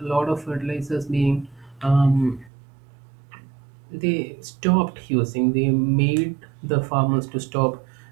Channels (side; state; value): left; drops out; at 2.5 s